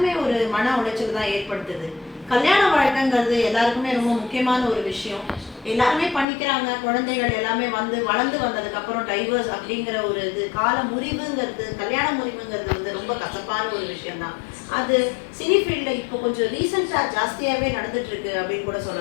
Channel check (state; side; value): drops out; right; at 6.2 s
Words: ஒரு மன உளைச்சல் தான் ஏற்படுத்துது. கல்யாண வாழ்க்கைங்கிறது எல்லாருக்குமே ரொம்ப முக்கியமான ஒரு விஷயம். எல்லாருமே பண்ணிக்கிறாங்க, குழந்தைகள் எல்லாமே வந்து வளர்ந்து வந்ததுக்கப்புறம் டைவர்ஸ் அப்படிங்கிற ஒரு இது கால முறிவுங்கிறது, கல்யாண முறிவுங்கிறது வந்து ரொம்ப கசப்பான ஒரு விஷயம்தான். அது சினி ஃபீல்டில் இப்போ கொஞ்சம் ரீசெண்டாக ஜாஸ்தியாகவே நடந்துட்டு இருக்கு அப்படின்னு கூட